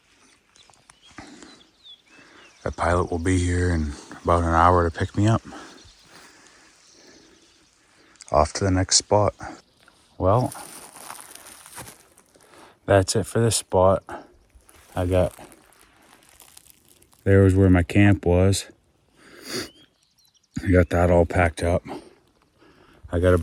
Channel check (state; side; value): identical; both; correlation 1.00